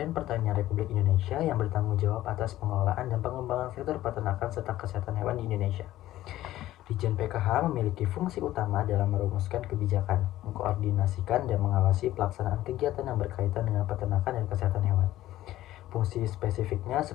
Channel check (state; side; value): quieter; right; 14.6 dB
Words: Pertanian Republik Indonesia yang bertanggung jawab atas pengelolaan dan pengembangan sektor peternakan serta kesehatan hewan di Indonesia. Ditjen PKH memiliki fungsi utama dalam merumuskan kebijakan, mengkoordinasikan dan mengawasi pelaksanaan kegiatan yang berkaitan dengan peternakan dan kesehatan hewan. Fungsi spesifiknya